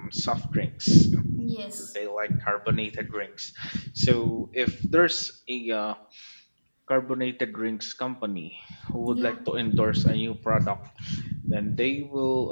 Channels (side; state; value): both; inverted; correlation -1.00